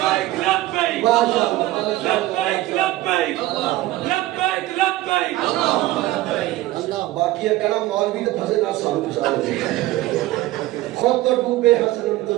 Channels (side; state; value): left; quieter; 16.8 dB